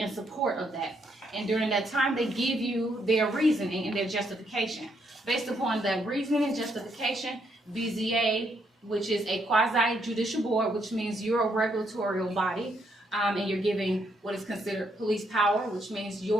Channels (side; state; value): both; normal; correlation 0.75